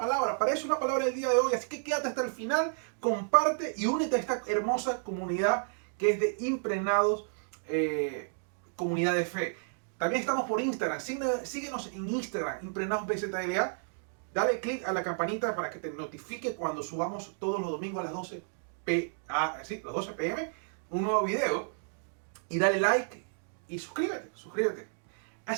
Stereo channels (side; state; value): left; silent; digital silence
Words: para eso es la palabra del día de hoy. Así que quédate hasta el final, comparte y únete a esta hermosa comunidad que es de Impregnados, comunidad de fe. También estamos por Instagram, síguenos en Instagram, Impregnados BZLA. Dale click a la campanita para que te notifique cuando subamos todos los domingos a las 12 p.m. un nuevo video. Y dale like y suscríbete.